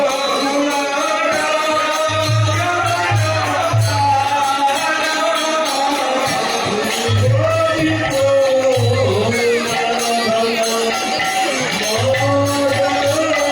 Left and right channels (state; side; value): identical; both; correlation 1.00